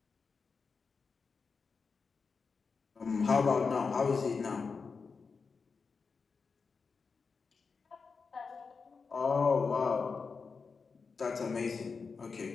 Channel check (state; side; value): quieter; right; 5.0 dB